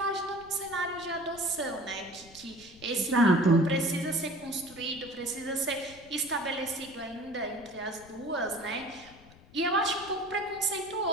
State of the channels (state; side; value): noise; left; rumble, 23 dB below the sound